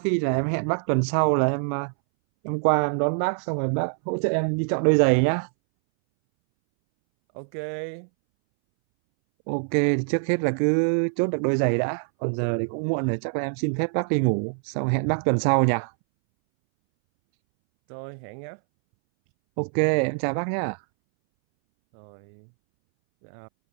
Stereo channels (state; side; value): silent; left; 62 dB below the other